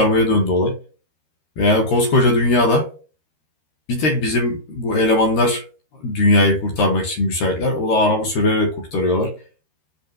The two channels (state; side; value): late; right; 13 ms